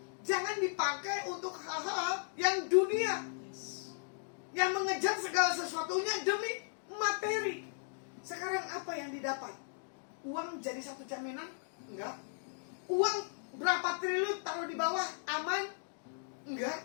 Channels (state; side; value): silent; right; digital silence